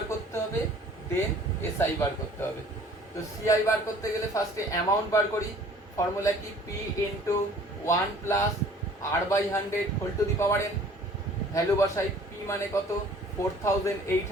করতে হবে, দেন এসআই বার করতে হবে। তো সিআই বার করতে গেলে ফার্স্টে অ্যামাউন্ট বার করি, ফর্মুলা কি, P into 1 plus r/100 whole to the power n। Value বসাই, পি মানে কত,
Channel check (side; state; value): both; normal; correlation 0.52